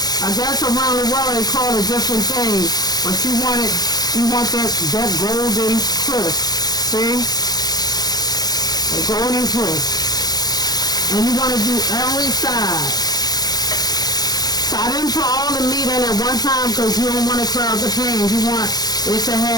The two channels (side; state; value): right; late; 0.19 ms